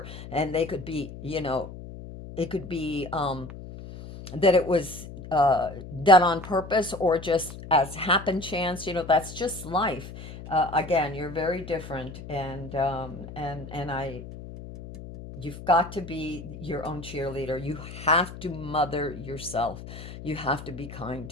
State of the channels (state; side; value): noise; left; hum, 12 dB below the sound